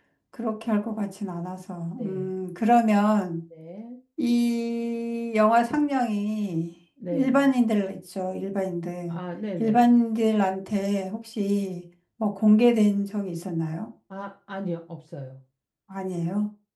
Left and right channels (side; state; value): both; identical; correlation 1.00